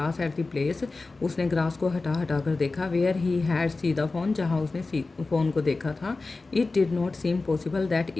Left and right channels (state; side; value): quieter; right; 3.6 dB